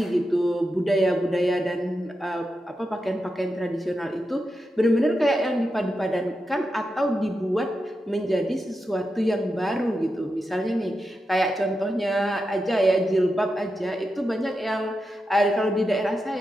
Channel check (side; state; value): both; normal; correlation 0.88